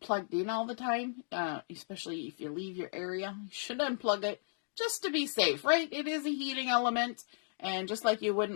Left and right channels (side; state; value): right; silent; digital silence